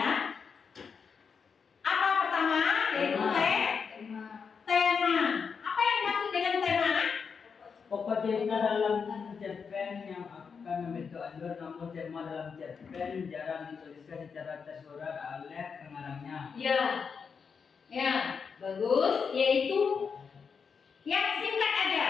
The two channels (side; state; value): right; quieter; 5.9 dB